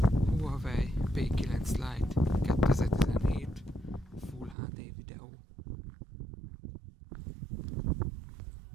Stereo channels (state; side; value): drops out; left; at 4.5 s